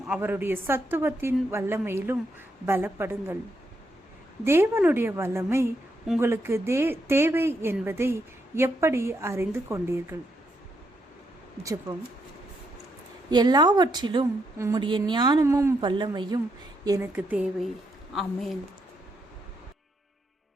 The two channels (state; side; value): normal; both; correlation 0.78